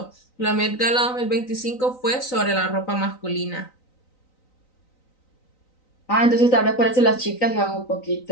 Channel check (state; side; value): late; right; 3.9 ms